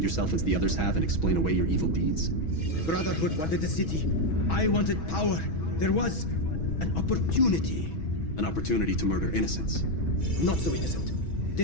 yourself as the others have and explain away your evil deeds? The Brotherhood wanted the city. I wanted power. There was an opportunity. An opportunity to murder innocents. Not so innocent.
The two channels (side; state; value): right; late; 6.2 ms